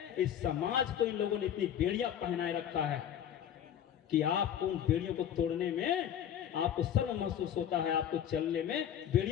इस समाज को इन लोगों ने इतनी बेड़ियां पहनाए रखा है कि आपको उन बेड़ियों को तोड़ने में आपको शर्म महसूस होता है। आपको चलने में,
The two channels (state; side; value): quieter; right; 9.7 dB